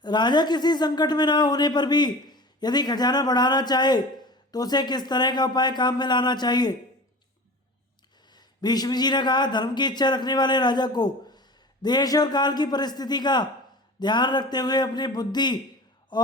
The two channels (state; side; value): normal; both; correlation 0.36